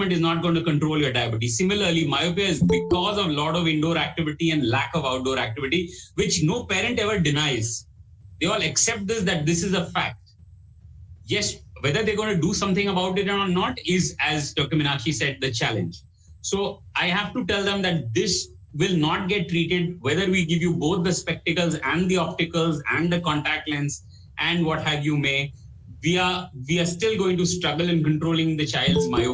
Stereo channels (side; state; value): both; identical; correlation 1.00